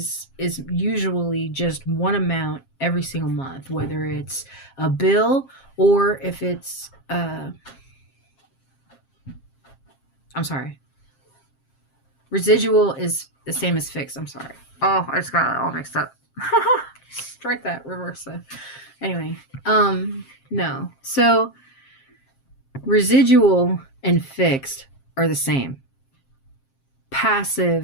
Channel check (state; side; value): late; right; 7.5 ms